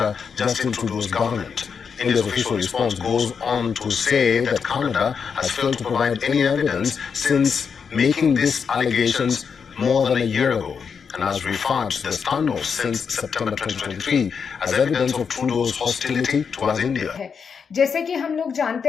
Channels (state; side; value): quieter; right; 6.2 dB